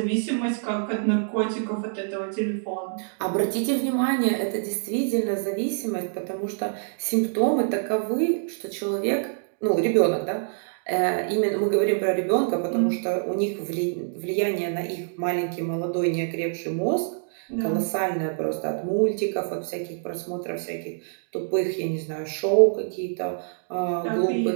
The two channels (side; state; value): left; silent; digital silence